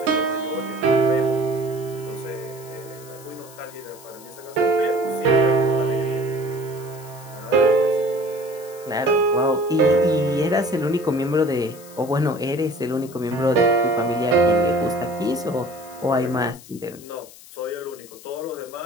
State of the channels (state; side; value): noise; left; hiss, 20 dB below the sound